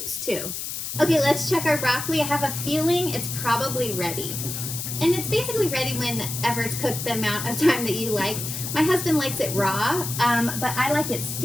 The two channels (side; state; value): left; noise; hiss, 5 dB below the sound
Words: too. Okay, let's check our broccoli. I have a feeling it's probably ready. And it's basically ready whenever it's cooked, the amount of time that you like. My husband likes it raw, but I like it